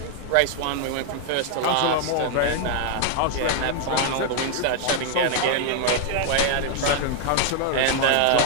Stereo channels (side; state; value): both; different; correlation 0.00